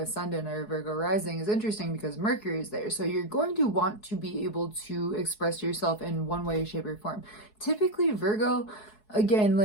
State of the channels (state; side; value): late; right; 4.7 ms